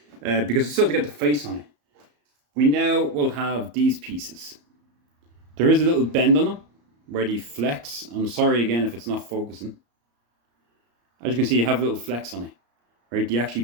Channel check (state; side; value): late; left; 34 ms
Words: because it's still to get the face on it. We now will have these pieces. There is a little bend on them where they flex. I'm sorry again if it's not focusing. As you can see, you have a little flex on it, right? They actually